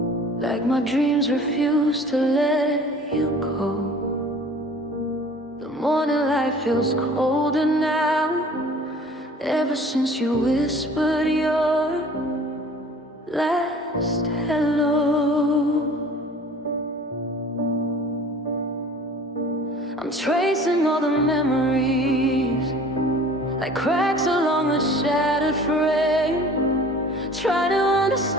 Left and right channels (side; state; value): both; normal; correlation 0.47